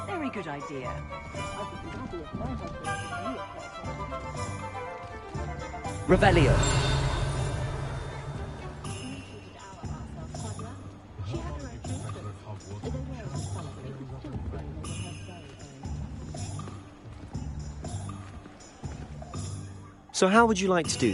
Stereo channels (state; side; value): identical; both; correlation 1.00